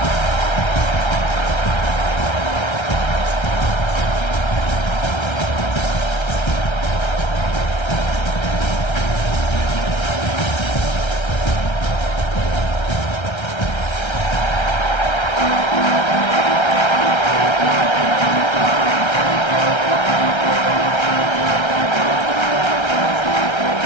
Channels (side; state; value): right; late; 1.3 ms